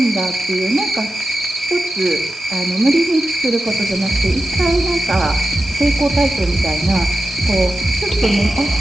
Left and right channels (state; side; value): normal; both; correlation 0.91